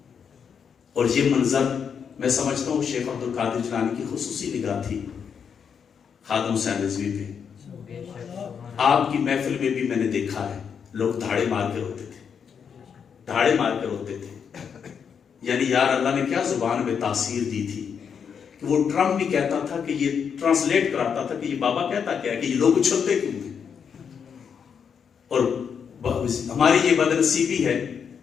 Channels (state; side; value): quieter; right; 7.0 dB